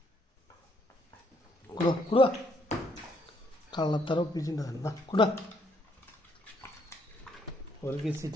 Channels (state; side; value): normal; both; correlation 0.70